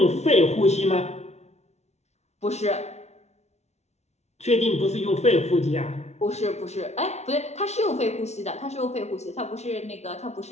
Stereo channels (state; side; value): late; right; 0.32 ms